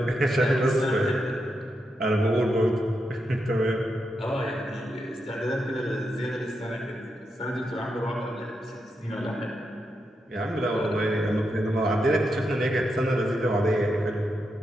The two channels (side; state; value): both; normal; correlation 0.85